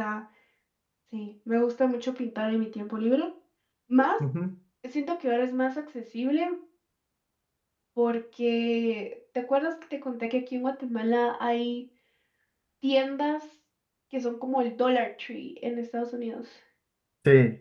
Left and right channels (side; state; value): both; identical; correlation 1.00